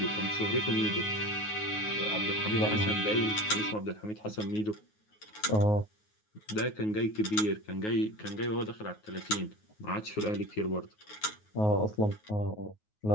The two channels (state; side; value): late; right; 9.4 ms